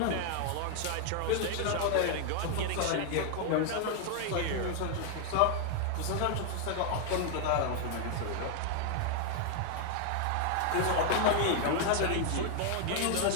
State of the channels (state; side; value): different; both; correlation 0.00